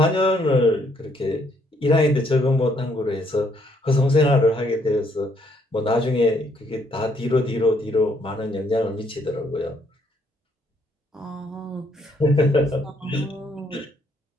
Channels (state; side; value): normal; both; correlation 0.69